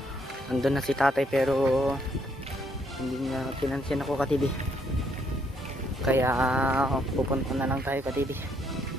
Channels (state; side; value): normal; both; correlation 0.71